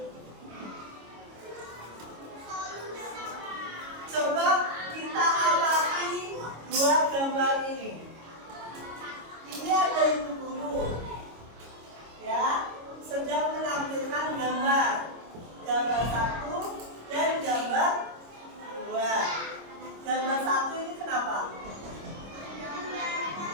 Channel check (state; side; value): late; left; 26 ms